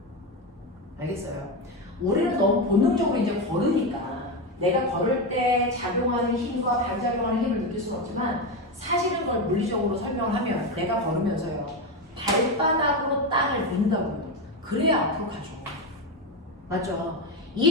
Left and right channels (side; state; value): both; normal; correlation 0.14